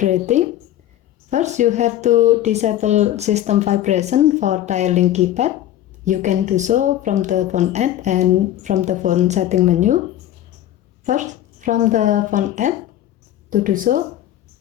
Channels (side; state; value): right; quieter; 12.5 dB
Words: first you have to disable system vibration for dialing keypad. You can do so from the phone app and from the phone setting menu. First, from the phone app, to do so,